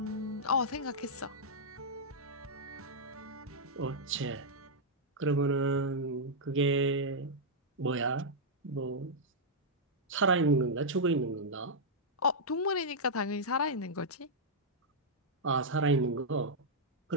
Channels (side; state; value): both; normal; correlation -0.07